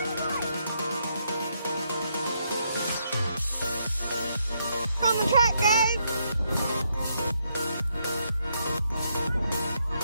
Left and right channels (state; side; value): inverted; both; correlation -0.77